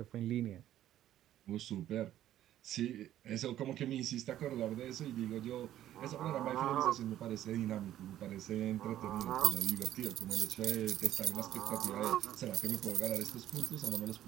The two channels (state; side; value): quieter; left; 12.5 dB